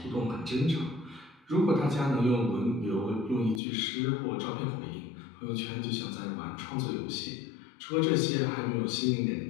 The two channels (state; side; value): drops out; right; at 3.6 s